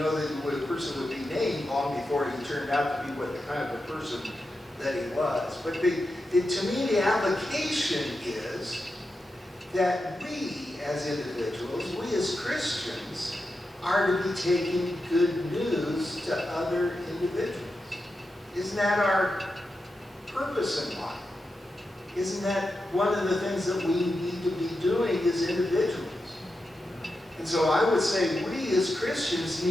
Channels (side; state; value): both; normal; correlation 0.89